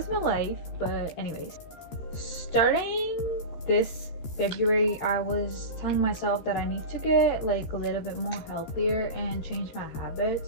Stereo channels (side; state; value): right; late; 14 ms